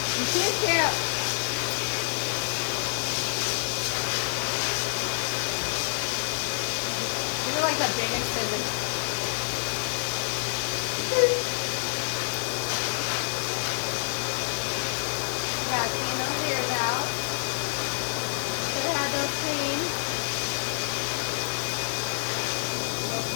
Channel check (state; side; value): silent; right; digital silence